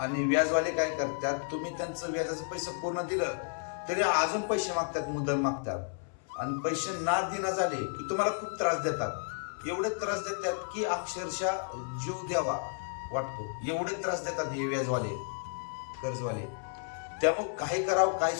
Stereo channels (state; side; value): silent; right; 56 dB below the other